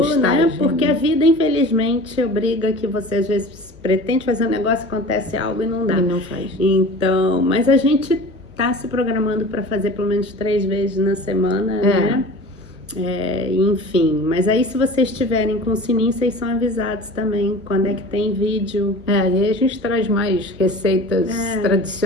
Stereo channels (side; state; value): left; noise; hum, 24 dB below the sound